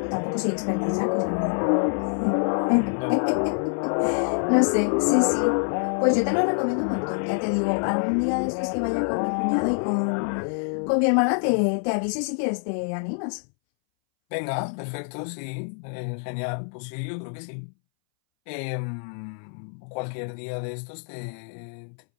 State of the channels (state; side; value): silent; right; 61 dB below the other